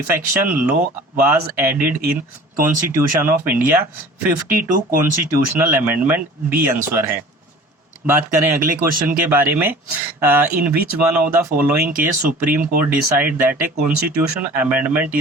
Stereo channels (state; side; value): normal; both; correlation 0.44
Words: law was added in constitution of India. 52 constitutional amendment B answer है। बात करें अगले क्वेश्चन के बारे में, in which one of the following case Supreme Court decide that a constitution amendment